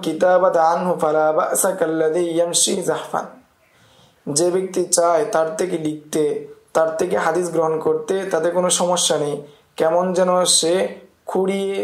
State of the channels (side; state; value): both; identical; correlation 1.00